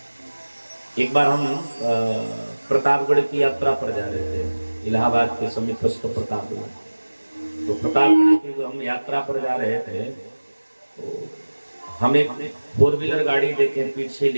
एक बार हम प्रतापगढ़ की यात्रा पर जा रहे थे, इलाहाबाद के समीपस्थ प्रतापगढ़। तो प्रतापगढ़ की हम यात्रा पर जा रहे थे, तो हम एक 4 व्हीलर गाड़ी देखे, पीछे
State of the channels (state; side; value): inverted; both; correlation -1.00